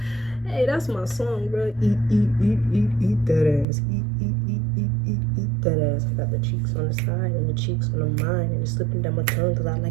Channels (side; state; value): left; drops out; at 3.7 s